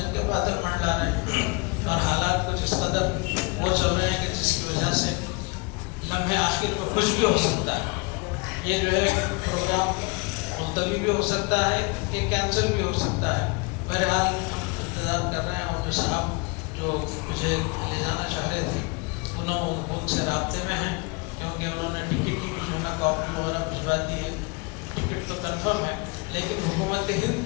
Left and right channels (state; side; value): quieter; right; 29.5 dB